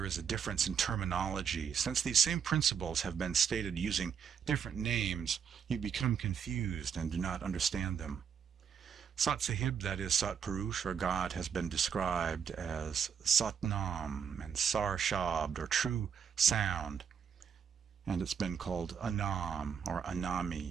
is a difference in terminology. Since these same principles have been stated using different names, you become confused and do not understand them. Sat Sahib, that is Sat Purush, or God, has been described as Satnam and Sar Shabd, or true sound, and it's been called Anam, or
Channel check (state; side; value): quieter; left; 7.3 dB